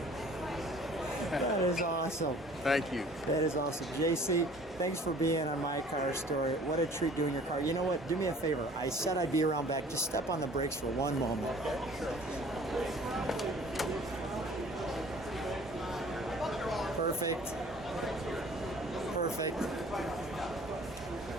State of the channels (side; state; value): both; normal; correlation 0.50